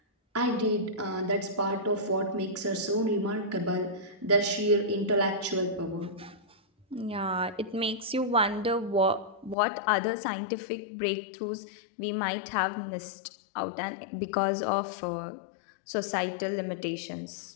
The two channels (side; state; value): right; drops out; at 9.6 s